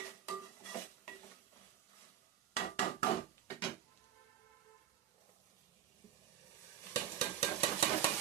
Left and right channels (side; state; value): left; quieter; 10.6 dB